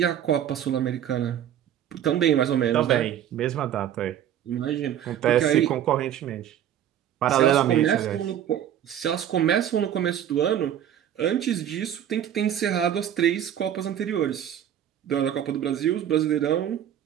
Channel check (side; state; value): left; quieter; 10.3 dB